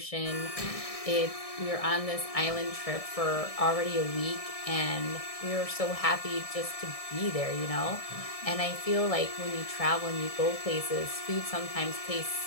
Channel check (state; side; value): late; right; 1.6 ms